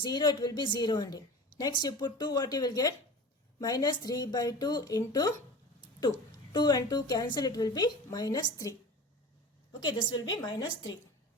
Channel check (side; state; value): both; normal; correlation 0.35